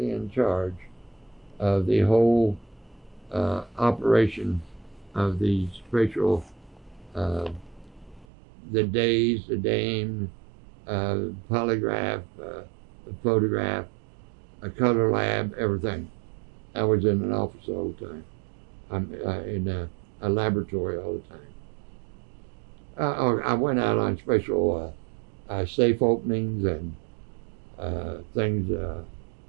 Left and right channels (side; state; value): left; drops out; at 8.2 s